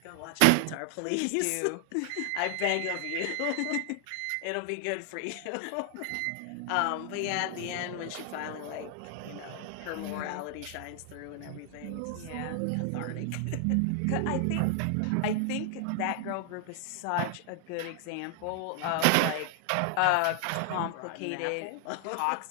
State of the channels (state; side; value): different; both; correlation 0.00